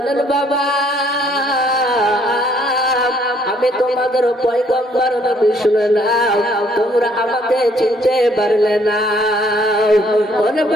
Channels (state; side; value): normal; both; correlation 0.64